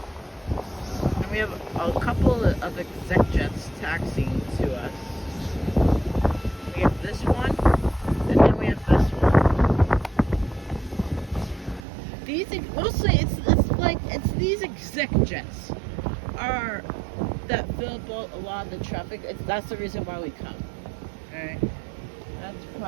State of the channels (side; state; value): left; drops out; at 11.9 s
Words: And we have a couple of exec jets taxiing to us. We have this one, and then we have this one. These mostly it's these exec jets are that fill up a lot of the traffic. That's the reason why we come. All right, that's